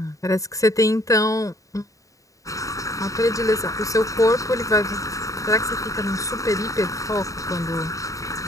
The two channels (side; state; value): right; late; 0.16 ms